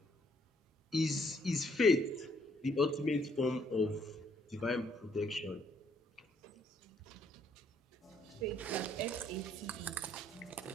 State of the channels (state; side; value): normal; both; correlation 0.68